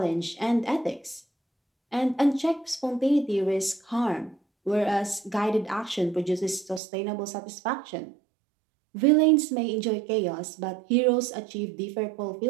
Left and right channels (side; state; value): left; drops out; at 6.8 s